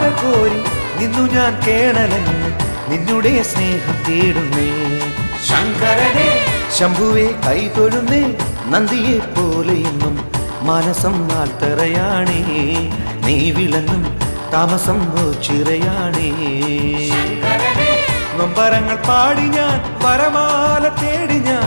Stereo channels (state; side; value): inverted; both; correlation -1.00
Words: കോരി നിന്നു ഞാൻ കേണലങ്ങ്, നിന്നുടെ സ്നേഹം തേടുന്നേ. ശങ്കരനെ ശംഭുവെ കൈതൊഴുന്നേ നന്ദിയെ പോലെയെന്നും മനസം നാട്ടറയാണേ, നീ വിളങ്ങും താമസം ചിറയാണേ. നൊമ്പരങ്ങൾ പാടി ഞാൻ വരമാല തേടി